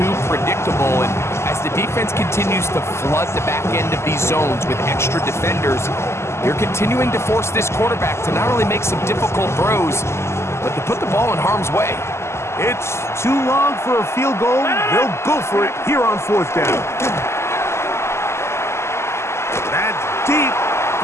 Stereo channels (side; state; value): right; late; 0.13 ms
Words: predictable. And as the defense continues to flood the back end of these zones with extra defenders, you're continuing to force this quarterback to not only make some difficult throws, but to put the ball in harm's way. It's too long for a field goal. They'll go for it here on 4th down. That's deep